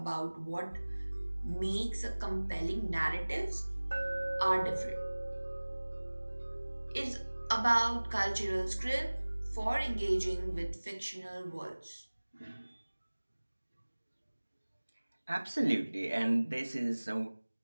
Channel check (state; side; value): inverted; both; correlation -1.00